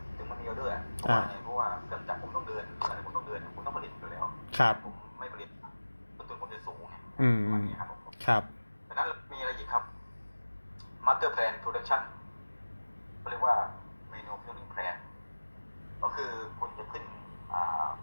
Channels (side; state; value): both; inverted; correlation -1.00